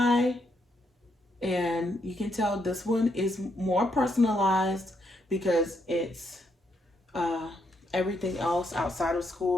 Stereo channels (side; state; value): both; normal; correlation 0.77